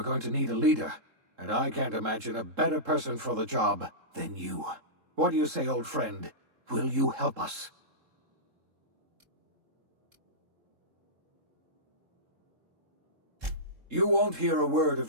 going to need a leader, and I can't imagine a better person for the job than you. What do you say, old friend? Will you help us? You won't hear a word of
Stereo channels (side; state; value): left; late; 3.7 ms